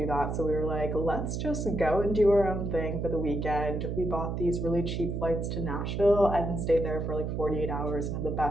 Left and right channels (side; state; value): right; noise; hum, 3 dB below the sound